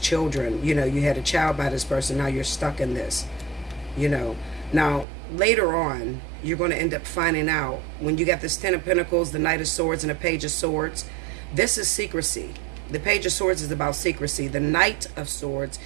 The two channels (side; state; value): left; drops out; at 5.1 s